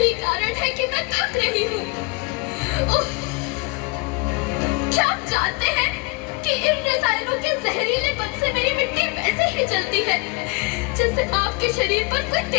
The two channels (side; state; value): right; quieter; 26.7 dB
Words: कारण है कि मैं थक रही हूँ। क्या आप जानते हैं कि इन रसायनों के जहरीलेपन से मेरी मिट्टी वैसे ही जलती है जैसे आपके शरीर पर कोई